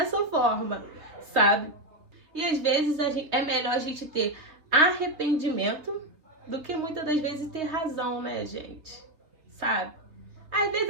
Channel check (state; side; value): late; left; 3.4 ms